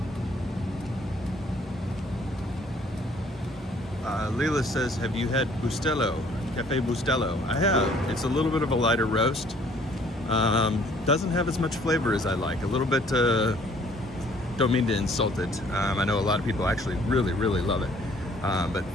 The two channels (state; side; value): normal; both; correlation 0.59